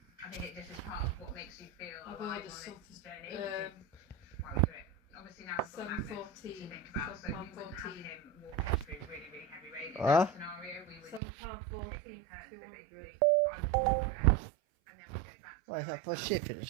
I think it just is part of what makes you feel I've alive ordered on something, this journey. which is um, why we do it. Obviously now we've got Magnus to 7.14. think about, so we wouldn't have 7.14. him walking through really, really heavy rain. In Huh? that scenario, we would £7.14 take it in turns. So 200. basically, I would walk there, and then we'd go back to What is that for where I shipping as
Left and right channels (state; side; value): drops out; left; at 11.2 s